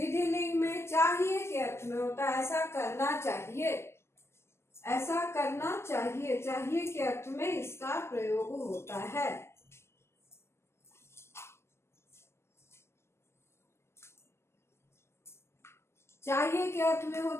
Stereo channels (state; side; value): late; right; 0.13 ms